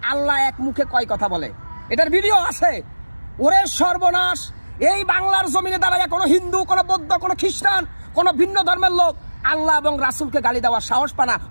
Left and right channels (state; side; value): inverted; both; correlation -1.00